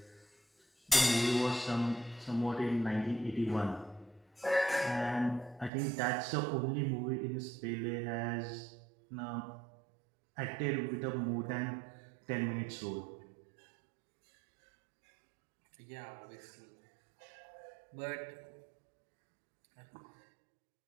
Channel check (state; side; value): drops out; left; at 5.7 s